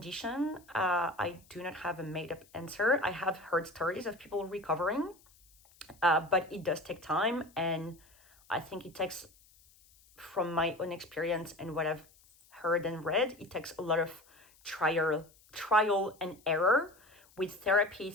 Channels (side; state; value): left; noise; hiss, 28 dB below the sound